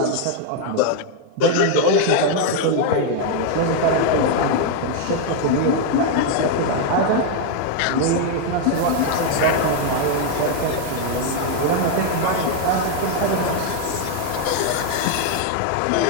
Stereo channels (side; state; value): both; different; correlation 0.00